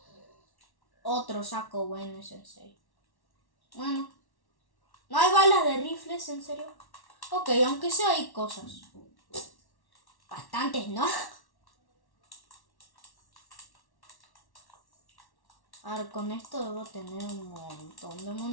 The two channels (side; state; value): right; late; 1.1 ms